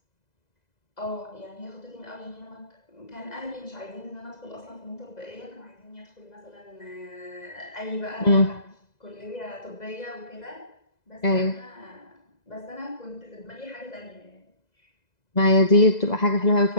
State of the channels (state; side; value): late; right; 2.0 ms